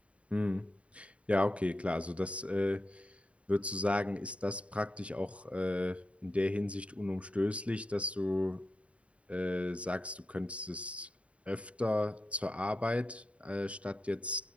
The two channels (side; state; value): left; late; 0.063 ms